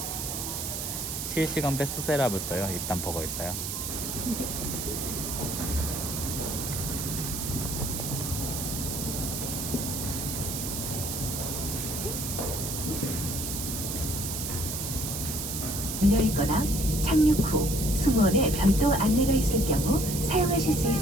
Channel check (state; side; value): noise; right; hiss, 4 dB below the sound